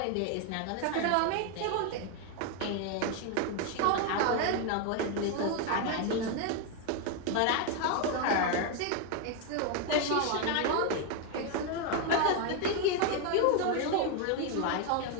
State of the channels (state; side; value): different; both; correlation 0.01